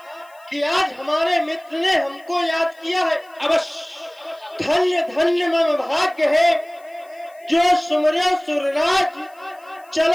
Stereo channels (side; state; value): left; noise; hiss, 30 dB below the sound